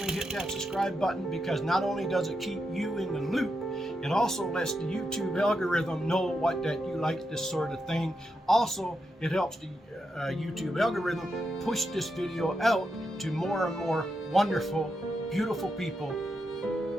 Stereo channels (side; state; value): both; normal; correlation 0.85